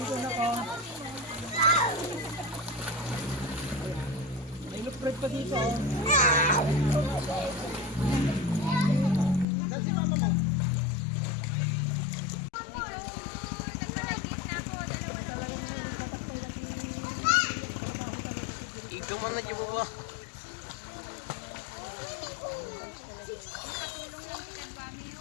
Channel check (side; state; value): right; drops out; at 9.5 s